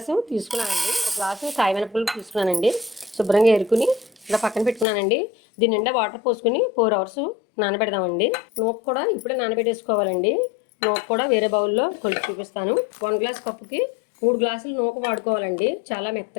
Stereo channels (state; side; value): drops out; right; at 4.9 s